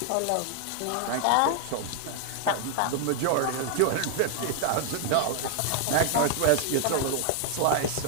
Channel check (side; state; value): both; different; correlation 0.00